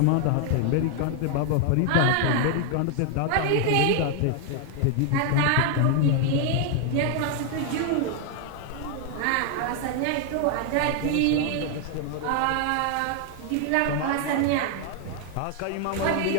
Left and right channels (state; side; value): different; both; correlation 0.00